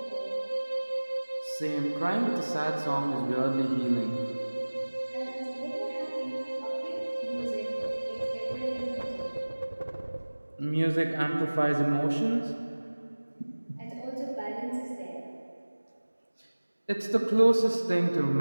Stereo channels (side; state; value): both; inverted; correlation -1.00